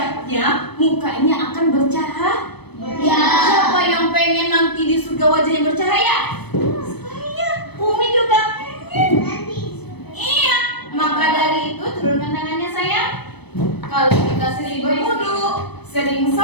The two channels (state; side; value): late; right; 0.98 ms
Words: mukanya akan bercahaya. Siapa yang pengen nanti di surga wajahnya bercahaya? Saya, Umi juga pengen. Iya, maka dari itu turunkan tangannya sayang. Kalau kita sering berwudu, sering